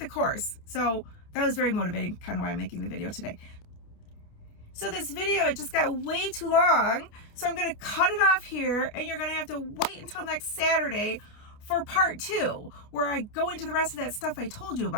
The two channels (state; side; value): late; right; 28 ms